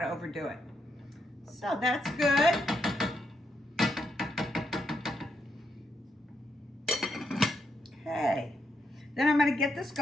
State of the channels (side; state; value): both; normal; correlation 0.81